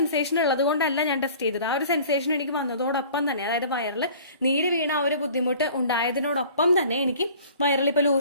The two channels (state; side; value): inverted; both; correlation -0.47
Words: ഉള്ളത് കൊണ്ടല്ല ഞാൻ ടെസ്റ്റ് ചെയ്തത്. ആ ഒരു സെൻസേഷൻ എനിക്ക് വന്നതോടൊപ്പം തന്നെ, അതായത് വയറിൽ നീര് വീണ ആ ഒരു ബുദ്ധിമുട്ട് ഉണ്ടായതിനോടൊപ്പം തന്നെ എനിക്ക് വയറിൽ ഇപ്പൊ